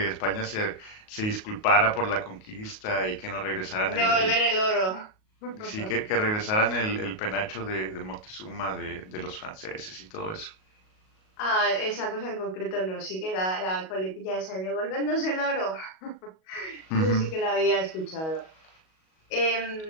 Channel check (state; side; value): late; right; 38 ms